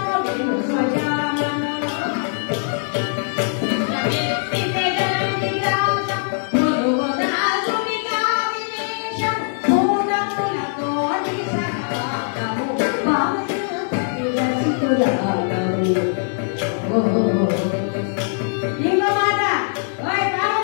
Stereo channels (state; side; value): silent; right; digital silence